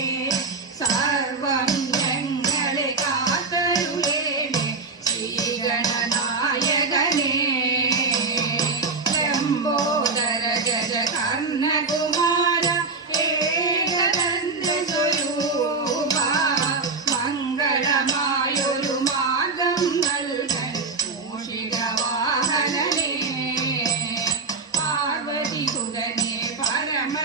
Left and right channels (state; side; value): quieter; left; 4.0 dB